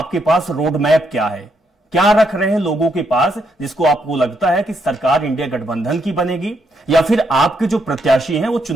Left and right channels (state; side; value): normal; both; correlation 0.77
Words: पास रोड मैप क्या है? क्या रख रहे हैं लोगों के पास जिसको आपको लगता है कि सरकार इंडिया गठबंधन की बनेगी, या फिर आपके जो प्रत्याशी हैं वो